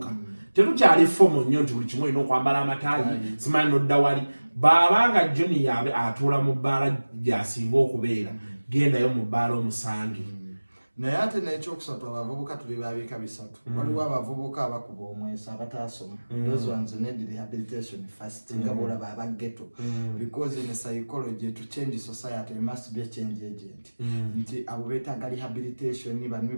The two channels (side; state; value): both; inverted; correlation -1.00